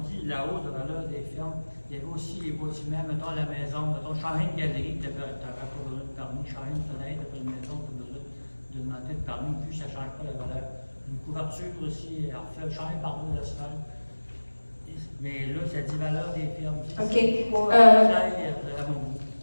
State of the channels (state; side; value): inverted; both; correlation -1.00